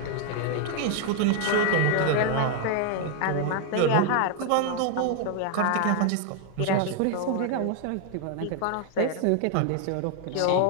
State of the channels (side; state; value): both; different; correlation 0.00